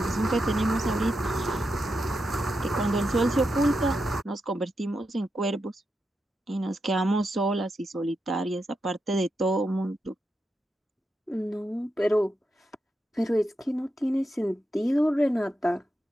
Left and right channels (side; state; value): both; normal; correlation 0.86